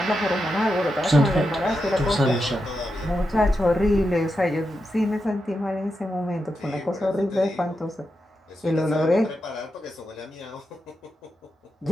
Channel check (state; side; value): normal; both; correlation 0.87